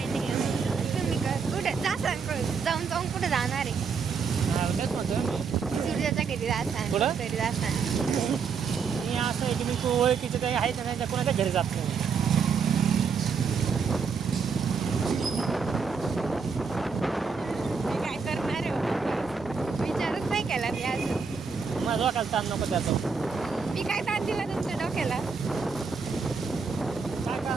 नाही तुम्ही कुठे जाऊन जाऊन कुठे जाणार आहे. तेच म्हणतो सूर्याच्या घरी जाता कुठं? घरी जाता. मी असं आहे की मी ओळखीचे काही आहेत ना त्या कोणाच्या घरी जात नाही. काय करणार आहे विचारच नाही केला मी अजून. माझा डोक्याला ताण नको त्याचा. मी काय ताण दिला तुमच्या डोक्याला. काय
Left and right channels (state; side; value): quieter; left; 5.6 dB